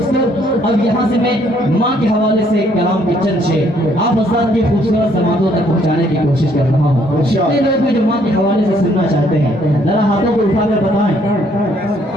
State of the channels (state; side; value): normal; both; correlation 0.66